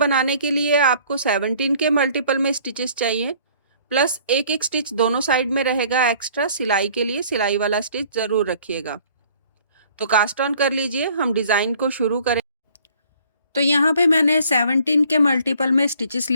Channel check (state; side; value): inverted; both; correlation -0.56